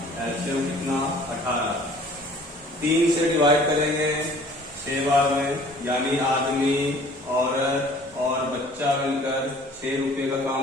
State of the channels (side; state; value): both; normal; correlation 0.52